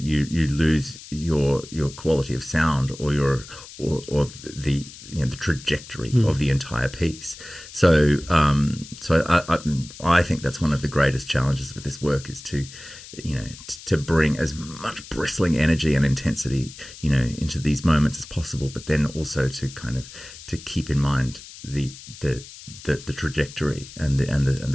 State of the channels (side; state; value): left; noise; hiss, 16 dB below the sound